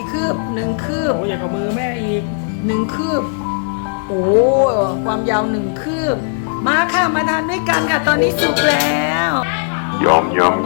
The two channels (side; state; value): right; silent; digital silence